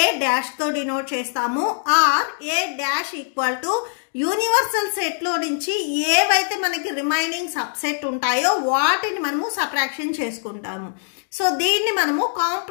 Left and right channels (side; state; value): right; silent; digital silence